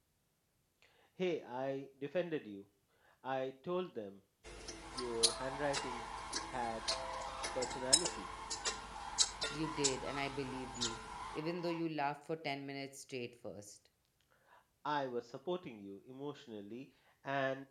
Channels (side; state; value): both; identical; correlation 1.00